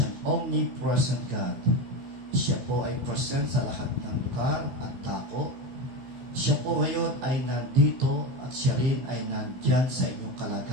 omnipresent God. Siya po ay present sa lahat ng lugar at dako. Siya po ngayon ay nandito at siya rin ay nandyan sa inyong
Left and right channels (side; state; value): left; late; 15 ms